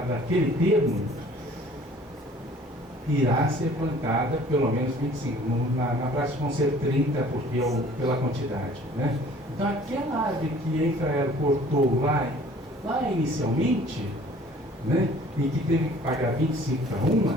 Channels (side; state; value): both; normal; correlation 0.52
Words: naquele termo, irá ser plantada pelo menos 25. Na prática vão ser 30 pela quantidade. Né? Então aquela árvore que a Infraero cortou lá inicialmente, né, e que teve que pagar 25:1,